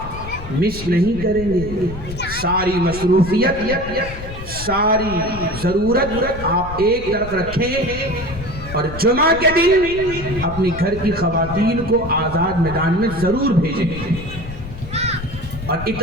مس نہیں کریں گے، ساری مصروفیت، ساری ضرورت آپ ایک طرف رکھیں اور جمعہ کے دن اپنی گھر کی خواتین کو آزاد میدان میں ضرور بھیجیں، اور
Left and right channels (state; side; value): noise; left; rumble, 11 dB below the sound